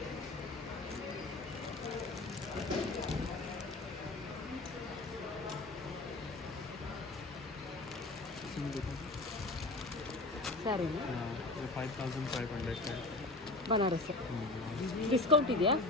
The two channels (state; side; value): quieter; right; 3.0 dB